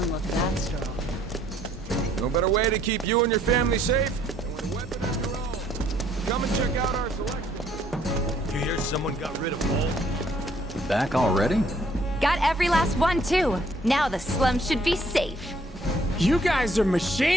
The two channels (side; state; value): both; normal; correlation 0.64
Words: look that strong. No better way to keep you and your family safe than with a weapon of your own. Come and check out our selection. You hear someone got rid of all? Back already? Got every last one, too. Now the slums should be safe. You guys are